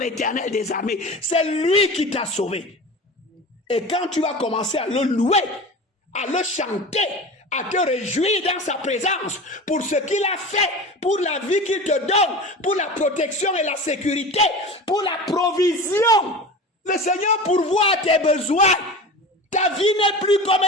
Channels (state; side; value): normal; both; correlation 0.32